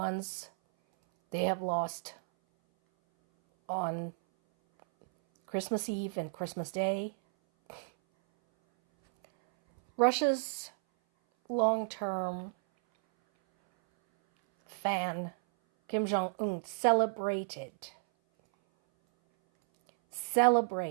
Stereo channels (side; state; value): left; silent; 56 dB below the other